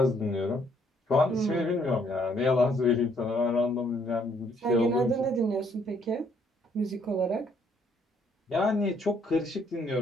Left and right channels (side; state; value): both; normal; correlation 0.67